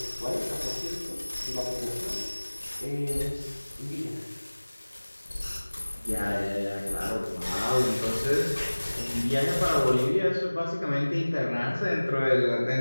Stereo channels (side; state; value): both; inverted; correlation -1.00